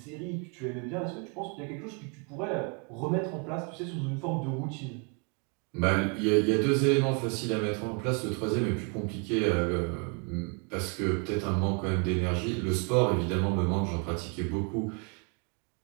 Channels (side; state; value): left; quieter; 35.2 dB